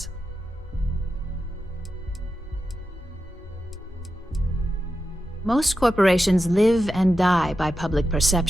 Most corporations live and die by public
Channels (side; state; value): both; normal; correlation 0.90